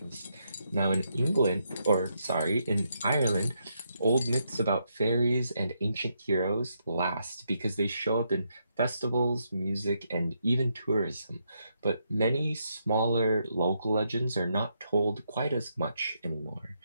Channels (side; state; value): both; inverted; correlation -0.79